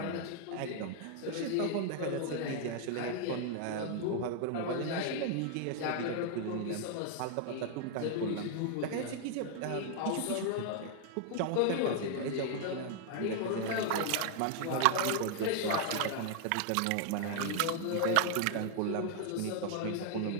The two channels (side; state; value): both; different; correlation 0.00